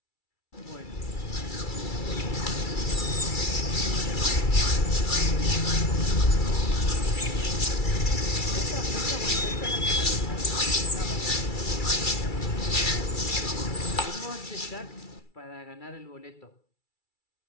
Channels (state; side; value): late; right; 2.3 ms